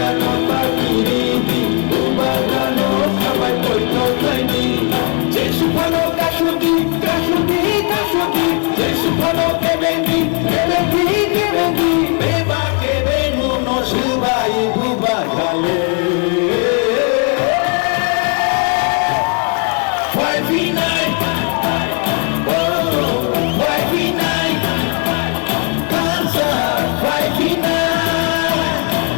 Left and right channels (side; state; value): right; quieter; 37.3 dB